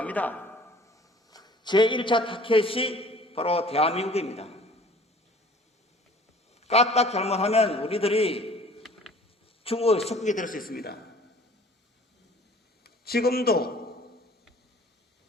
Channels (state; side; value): normal; both; correlation 0.50